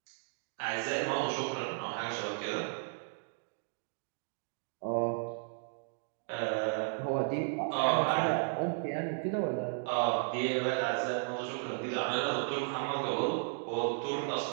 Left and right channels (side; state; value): left; silent; digital silence